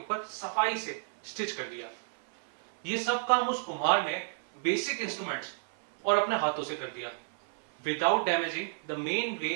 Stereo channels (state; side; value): silent; left; 57 dB below the other